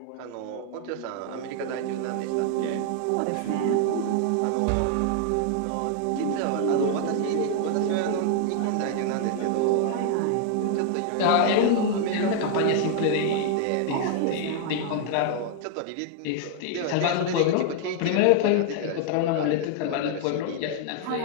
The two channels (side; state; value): both; different; correlation 0.00